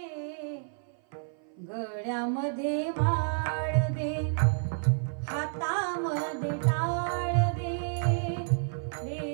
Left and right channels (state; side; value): silent; left; 56 dB below the other